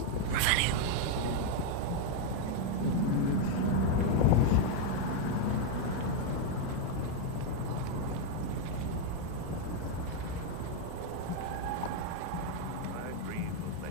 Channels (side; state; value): both; different; correlation 0.00